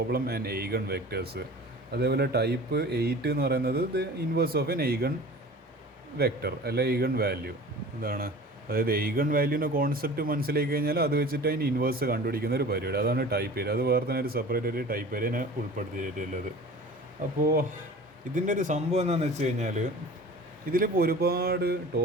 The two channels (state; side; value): normal; both; correlation 0.41